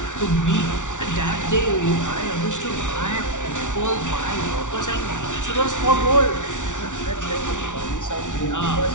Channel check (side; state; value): right; late; 0.86 ms